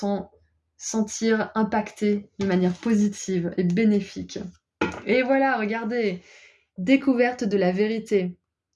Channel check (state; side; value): identical; both; correlation 1.00